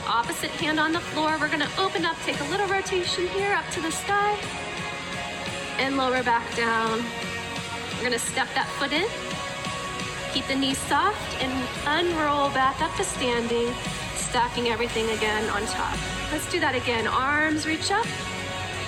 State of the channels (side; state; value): both; identical; correlation 1.00